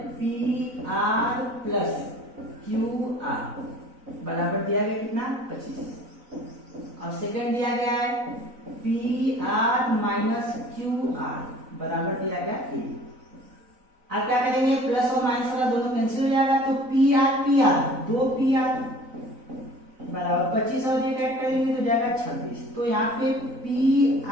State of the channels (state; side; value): late; left; 4.0 ms